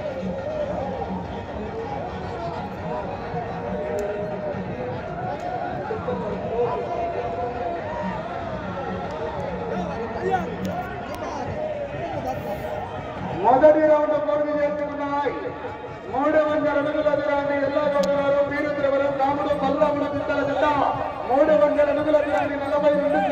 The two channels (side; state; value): both; identical; correlation 1.00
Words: మొదటి రౌండ్ పూర్తి చేసుకున్నాయి. 300 అడుగుల దూరాన్ని ఎల్లాగౌడగారు వీరద్రవరం రాముడు బలరాముడు చింతల జిల్ల 300 అడుగుల దూరాన్ని 42